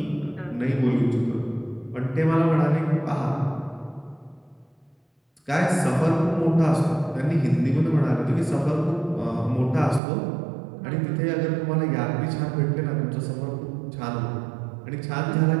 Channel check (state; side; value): drops out; left; at 10.0 s